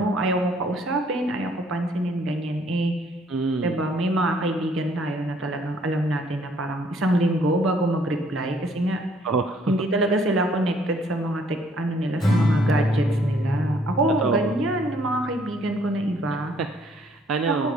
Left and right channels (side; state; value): both; normal; correlation 0.63